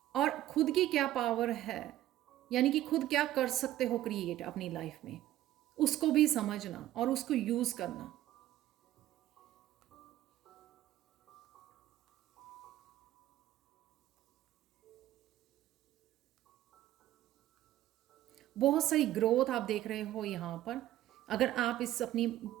और खुद की क्या पावर है, यानी कि खुद क्या कर सकते हो क्रिएट अपनी लाइफ में, उसको भी समझना और उसको यूज करना। बहुत सारी ग्रोथ आप देख रहे हो यहाँ पर। अगर आप इस अपनी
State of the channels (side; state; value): left; quieter; 13.8 dB